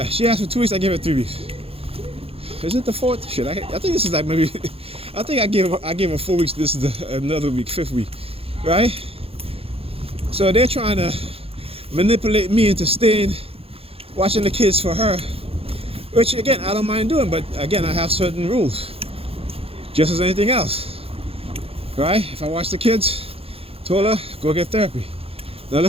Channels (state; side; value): late; left; 0.28 ms